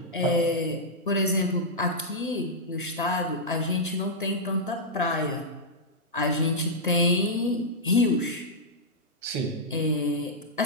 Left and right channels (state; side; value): normal; both; correlation -0.08